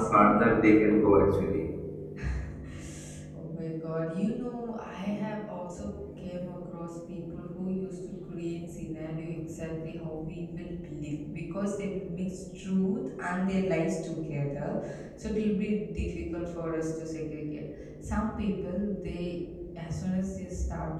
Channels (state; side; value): identical; both; correlation 1.00